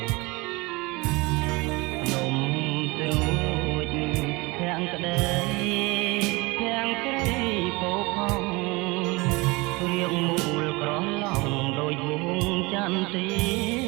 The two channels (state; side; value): quieter; left; 24.5 dB